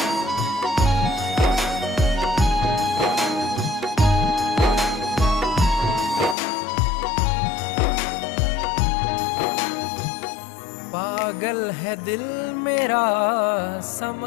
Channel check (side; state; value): right; drops out; at 6.4 s